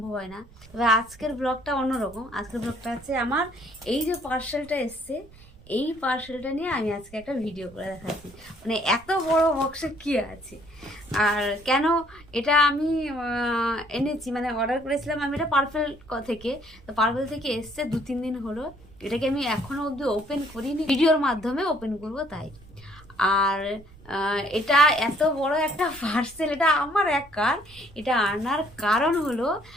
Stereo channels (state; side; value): noise; right; rumble, 22 dB below the sound